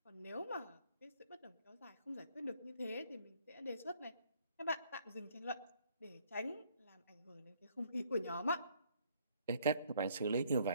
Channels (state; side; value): inverted; both; correlation -0.64